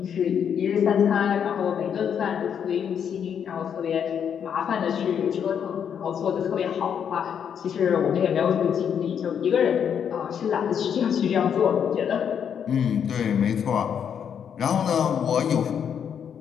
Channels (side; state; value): right; quieter; 8.0 dB